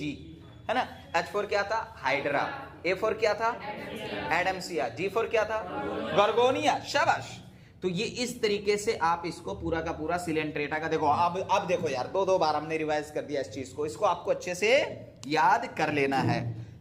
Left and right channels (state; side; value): identical; both; correlation 1.00